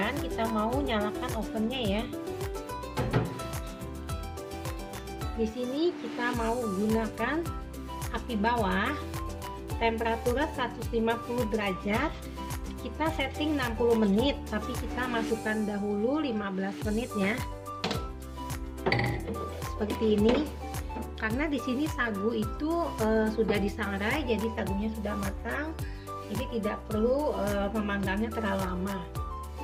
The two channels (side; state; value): both; identical; correlation 1.00